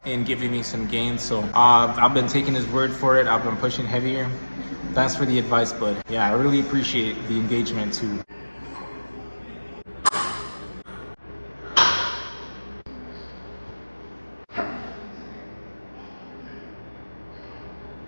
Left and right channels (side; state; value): both; inverted; correlation -1.00